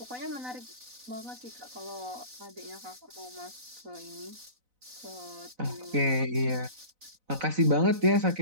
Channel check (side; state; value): left; late; 4.0 ms